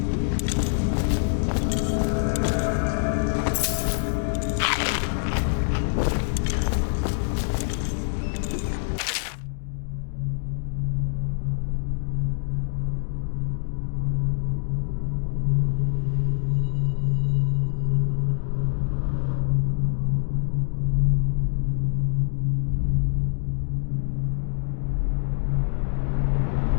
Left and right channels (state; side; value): silent; right; digital silence